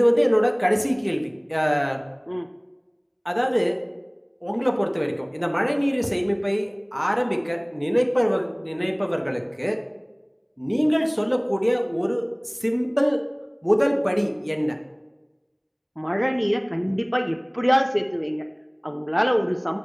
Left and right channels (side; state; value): both; identical; correlation 1.00